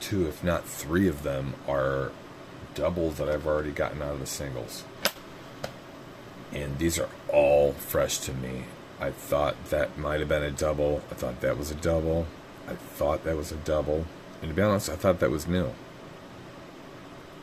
2, if not 3 of them are doubles that I've already gotten out of the singles. And these are all fresh to me. I thought that might have been a double. I thought that was a double. I thought that was a double. And to be honest, I thought that was new.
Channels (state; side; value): identical; both; correlation 1.00